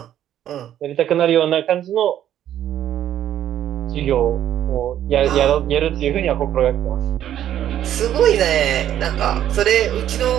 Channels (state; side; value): quieter; left; 11.1 dB